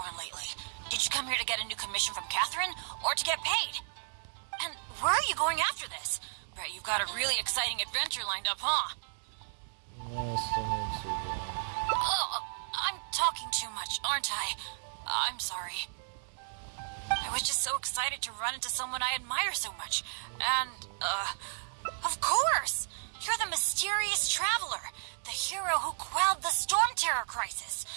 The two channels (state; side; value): silent; left; digital silence